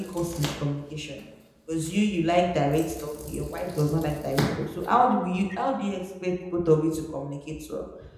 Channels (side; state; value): both; identical; correlation 1.00